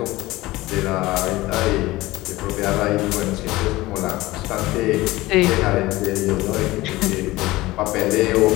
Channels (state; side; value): quieter; right; 18.9 dB